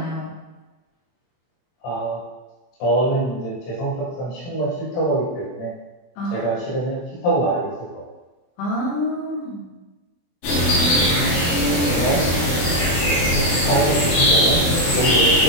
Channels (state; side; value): late; right; 24 ms